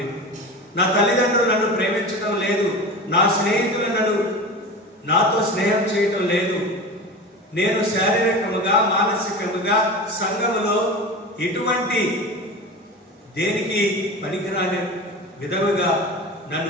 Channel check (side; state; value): both; normal; correlation 0.30